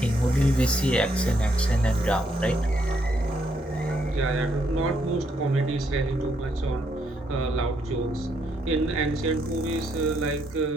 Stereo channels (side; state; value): both; normal; correlation 0.75